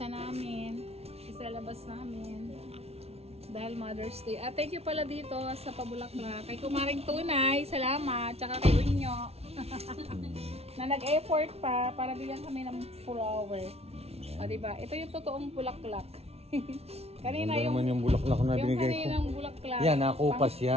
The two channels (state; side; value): late; left; 0.30 ms